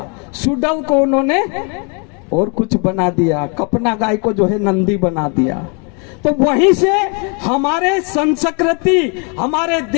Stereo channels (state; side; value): quieter; right; 35.5 dB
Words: सुडल को उन्होंने और कुछ बना दिया, कपना गाय को जो है नंदी बना दिया। तो वहीं से हमारे संस्कृति, हमारे